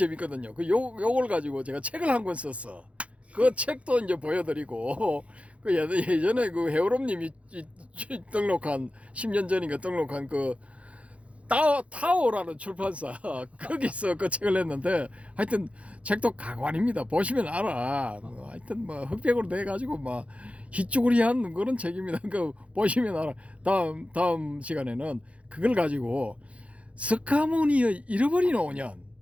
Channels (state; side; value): late; left; 0.063 ms